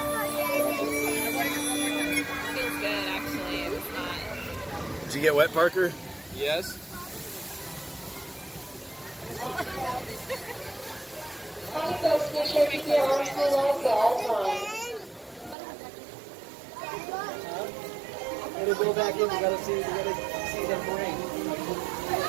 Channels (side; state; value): left; drops out; at 15.6 s